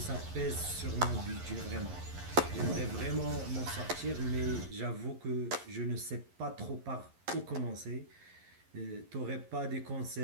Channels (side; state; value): left; late; 11 ms